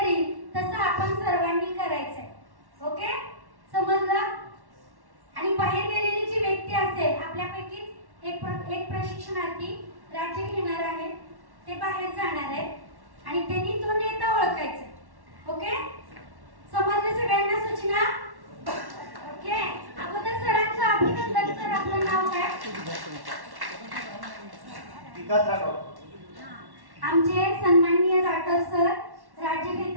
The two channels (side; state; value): left; late; 1.1 ms